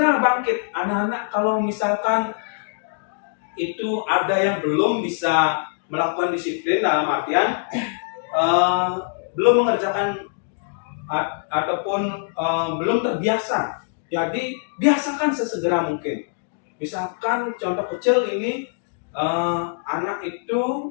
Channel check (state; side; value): silent; right; digital silence